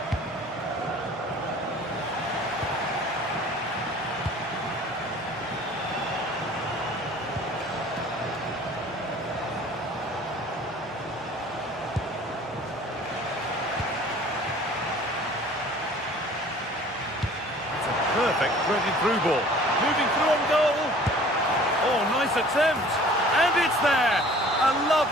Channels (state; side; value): normal; both; correlation 0.49